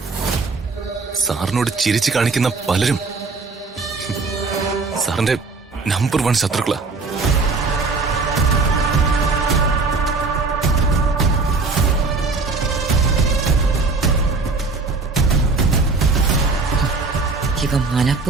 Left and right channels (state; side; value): quieter; left; 4.0 dB